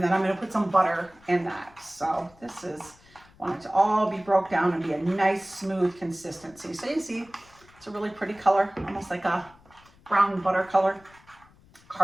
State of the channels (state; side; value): noise; left; rumble, 27 dB below the sound